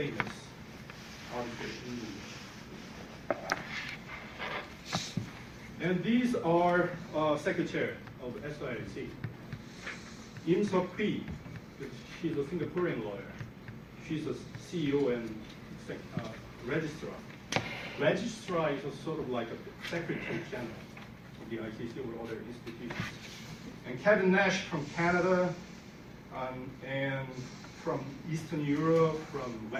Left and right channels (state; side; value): identical; both; correlation 1.00